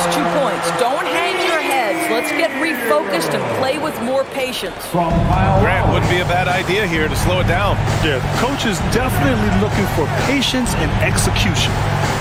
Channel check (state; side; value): identical; both; correlation 1.00